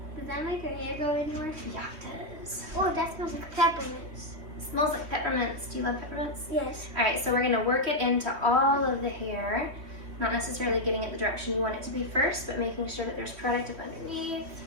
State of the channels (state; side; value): late; left; 3.1 ms